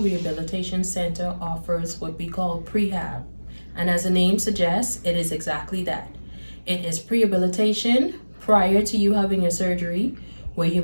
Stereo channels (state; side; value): inverted; both; correlation -1.00